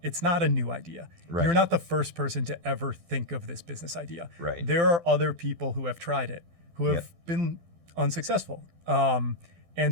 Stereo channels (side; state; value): left; late; 12 ms